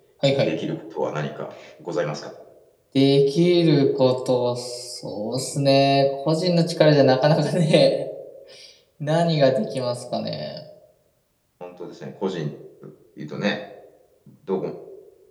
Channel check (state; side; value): identical; both; correlation 1.00